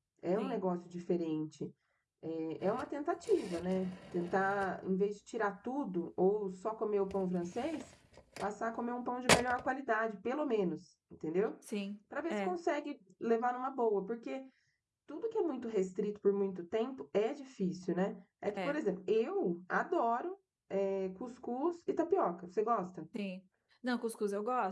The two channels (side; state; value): both; identical; correlation 1.00